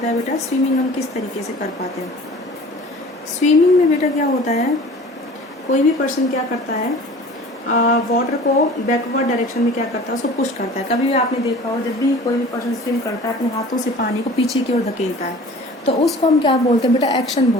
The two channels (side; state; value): both; normal; correlation 0.44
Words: है बेटा, स्विमिंग हम किस तरीके से कर पाते हैं। स्विमिंग में बेटा क्या होता है, कोई भी पर्सन क्या करता है, वाटर को बैकवर्ड डायरेक्शन में क्या करता है, उसको पुश करता है। कभी भी आपने देखा हो, जब भी कोई भी पर्सन स्विम करता है अपने हाथों से पानी को पीछे की ओर धकेलता है, तो उसको हम क्या बोलते हैं बेटा, एक्शन